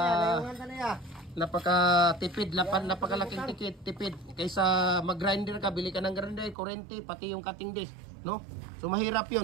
napakatipid, napakalaking tipid. Kaysa mag-grinder ka, bili ka ng grinder, kurente, pati yung cutting disc, no? So mahirap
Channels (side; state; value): left; drops out; at 6.6 s